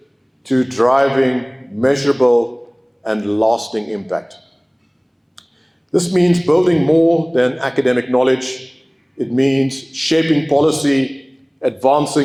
to driving measurable and lasting impact. This means building more than academic knowledge. It means shaping policy,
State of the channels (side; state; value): both; identical; correlation 1.00